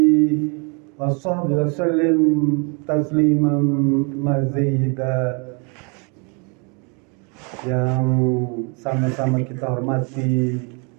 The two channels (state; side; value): quieter; left; 34.1 dB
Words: wa sahbihi wa sallim tasliman mazida. Yang sama-sama kita hormati